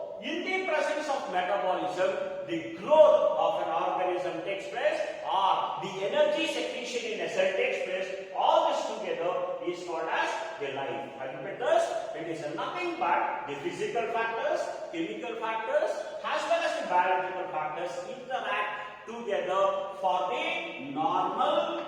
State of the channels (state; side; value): identical; both; correlation 1.00